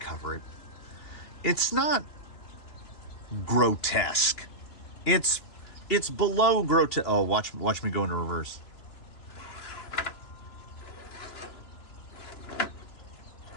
cover it. It's not grotesque. It's below grotesque. Oh, watch me go into reverse.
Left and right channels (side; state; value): right; late; 2.9 ms